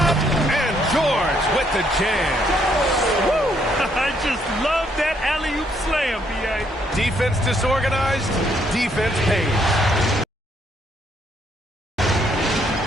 And George with the jam. Woo! I just love that alley-oop slam, B.A. Defense disorganized. Defense pays.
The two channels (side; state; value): both; normal; correlation 0.71